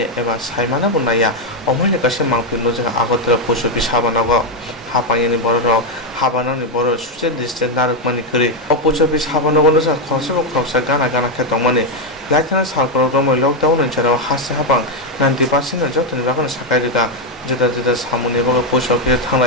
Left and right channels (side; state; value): both; normal; correlation 0.03